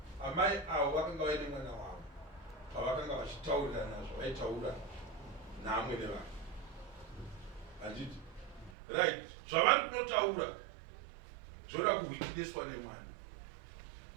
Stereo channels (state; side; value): drops out; left; at 8.7 s